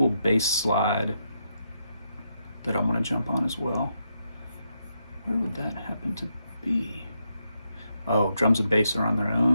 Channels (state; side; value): inverted; both; correlation -0.81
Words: bass slide that I want to jump on as well. Where would that happen to be? Oh, drums and bass are on their